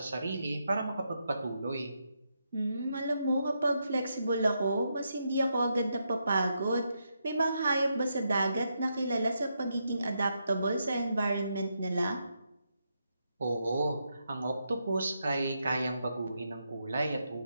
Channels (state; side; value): inverted; both; correlation -0.82